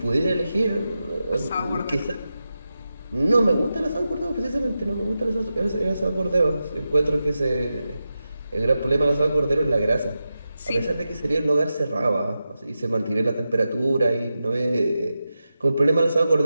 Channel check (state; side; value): inverted; both; correlation -0.91